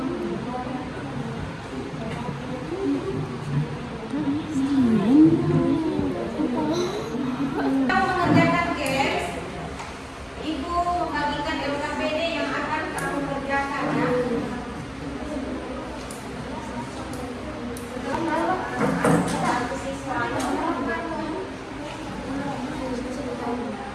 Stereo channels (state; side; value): identical; both; correlation 1.00